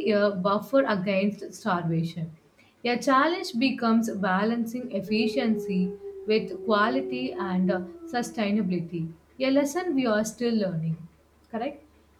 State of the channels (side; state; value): both; identical; correlation 1.00